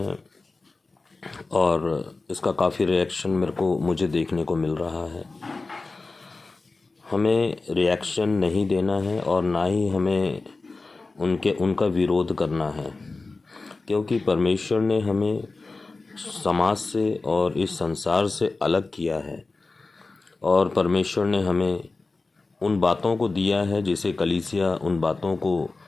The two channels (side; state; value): right; quieter; 3.7 dB